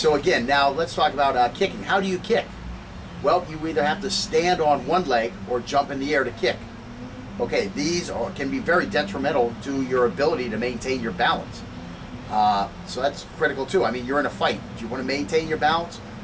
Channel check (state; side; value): identical; both; correlation 1.00